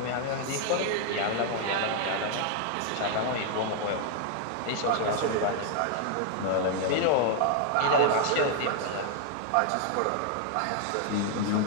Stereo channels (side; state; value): both; different; correlation 0.00